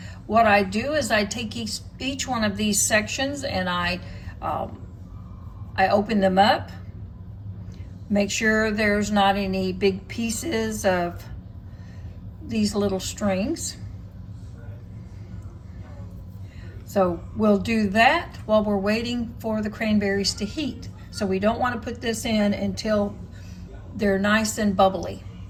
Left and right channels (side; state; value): both; identical; correlation 1.00